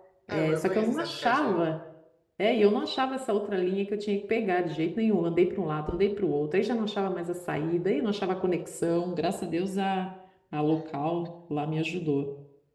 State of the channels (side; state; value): both; identical; correlation 1.00